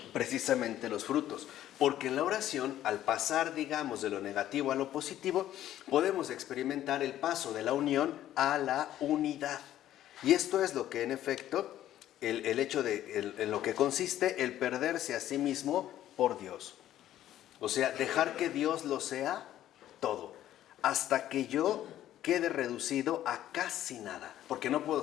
precisamente los frutos. Porque en la oración, al pasar, digamos, de lo negativo a lo positivo, podemos experimentar el paso de la unión a la unidad. Y esto es lo que, en efecto, el hecho de, en lo que consiste el perderse a sí mismo por Dios. O sea, dejar que Dios lo sea todo, hasta que yo quede reducido a casi nada, porque no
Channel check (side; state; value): right; quieter; 12.5 dB